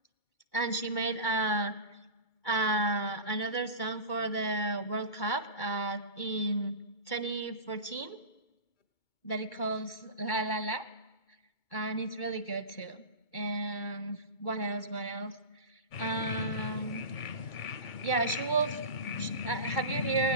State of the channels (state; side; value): late; right; 2.2 ms